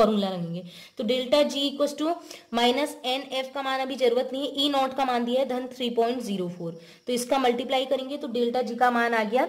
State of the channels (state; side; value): identical; both; correlation 1.00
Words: लगेंगे। तो delta G equal to minus N F का मान अभी जरूरत नहीं है, ई नॉट का मान दिया है धन 3.04, तो इसका मल्टीप्लाई करेंगे तो डेल्टा जी का मान आ गया